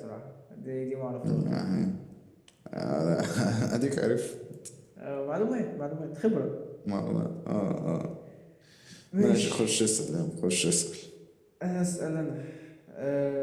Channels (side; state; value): both; identical; correlation 1.00